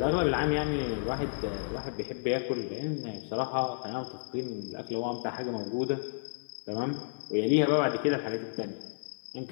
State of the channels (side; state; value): right; silent; 57 dB below the other